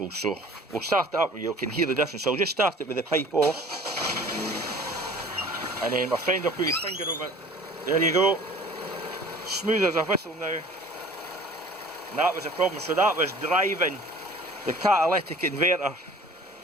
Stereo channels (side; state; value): both; normal; correlation 0.47